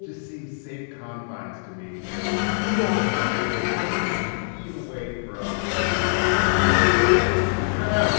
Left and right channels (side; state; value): right; silent; digital silence